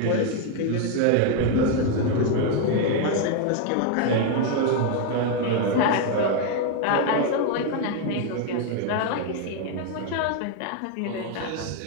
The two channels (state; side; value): different; both; correlation 0.01